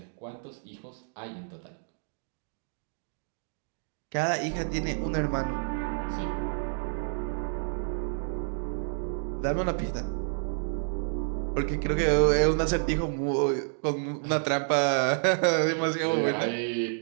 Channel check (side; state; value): left; silent; digital silence